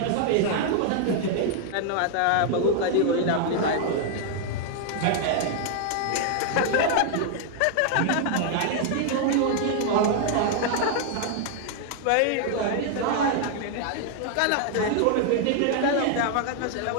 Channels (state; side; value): different; both; correlation 0.00